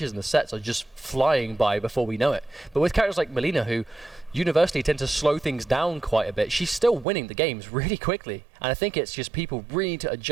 and the sets are just flying by before we know it. But with characters like Melina, who universally tend to slow things down quite a bit, she's still winning the games really quickly. And I think it's just people really need to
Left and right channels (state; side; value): drops out; left; at 7.1 s